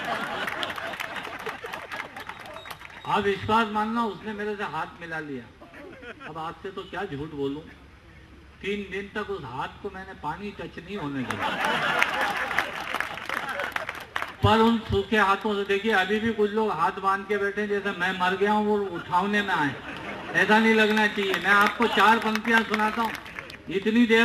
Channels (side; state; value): both; identical; correlation 1.00